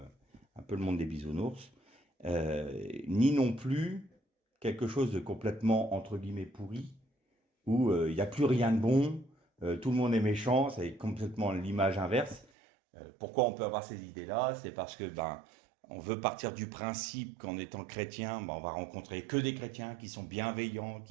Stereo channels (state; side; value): drops out; left; at 12.5 s